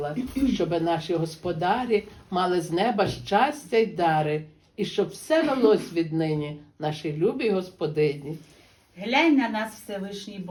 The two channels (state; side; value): identical; both; correlation 1.00